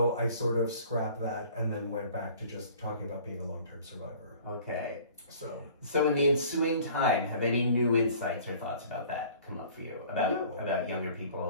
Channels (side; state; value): both; inverted; correlation -0.49